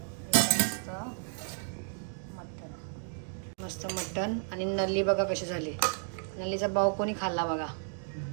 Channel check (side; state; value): left; silent; 56 dB below the other